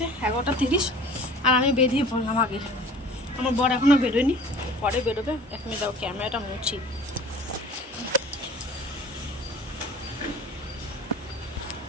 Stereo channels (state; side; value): normal; both; correlation 0.45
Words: 11:30, আর আমি বেরিয়ে পড়লাম আগে। আমার বর এখনও বেরোয়নি, পরে বেরোবে। 1 মিনিট দাও, ক্যামেরাটা মুছি।